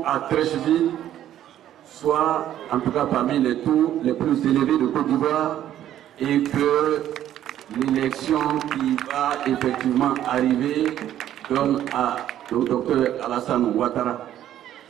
à Treichville soit en tout cas parmi les taux les plus élevés de Côte d'Ivoire et que l'élection qui va effectivement arriver donne au docteur Alassane Ouattara,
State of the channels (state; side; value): quieter; left; 11.7 dB